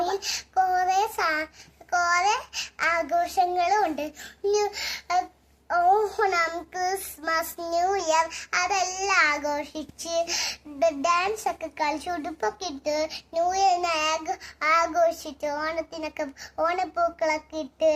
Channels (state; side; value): identical; both; correlation 1.00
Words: കുറെ ആഘോഷങ്ങളും ഉണ്ട്. ഓണം, ക്രിസ്മസ്, ന്യൂ ഇയർ അതെല്ലാം ആഘോഷിച്ച് ഡാൻസ് ഒക്കെ കളിച്ച് ഉടുപ്പൊക്കെ ഇട്ട് ന്യൂ ഇയറിനെ ആഘോഷിച്ച് ഓണപ്പൂക്കളൊക്കെ ഇട്ട്